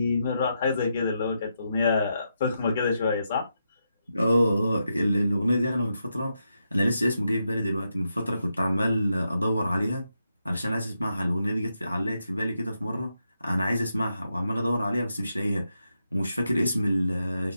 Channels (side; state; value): both; inverted; correlation -0.84